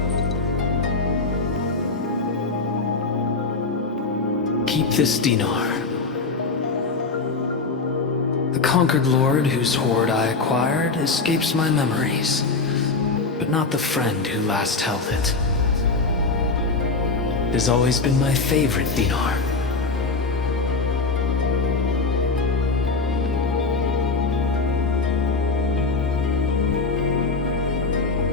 Keep this dinar. The conquered lord whose hoard I acquired escapes my memories, but not the friend who last held it. It has always been my favorite dinar.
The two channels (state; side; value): quieter; right; 4.0 dB